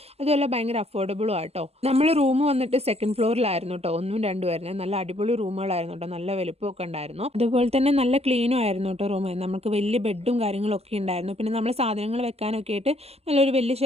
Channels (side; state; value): left; late; 0.30 ms